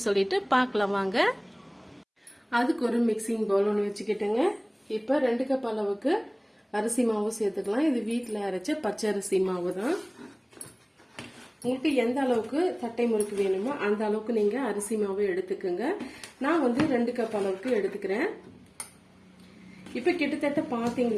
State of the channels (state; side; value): identical; both; correlation 1.00